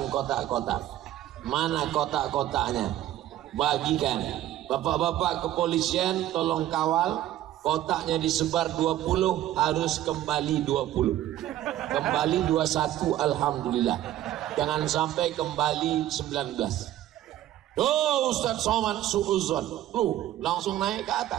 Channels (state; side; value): quieter; left; 13.4 dB